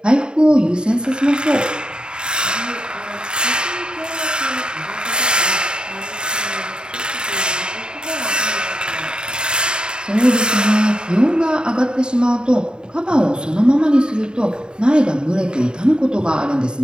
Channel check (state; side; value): late; left; 0.049 ms